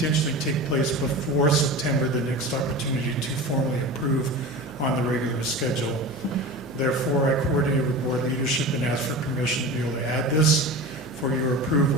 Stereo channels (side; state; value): right; noise; hum, 22 dB below the sound